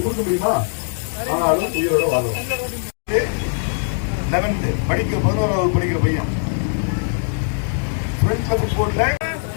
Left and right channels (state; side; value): silent; right; digital silence